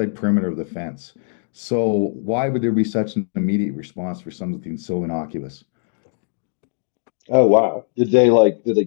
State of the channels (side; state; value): right; silent; digital silence